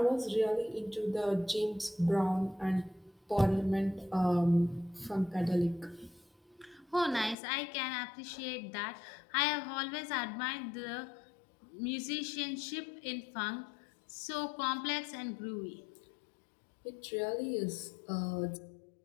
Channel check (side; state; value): right; drops out; at 7.4 s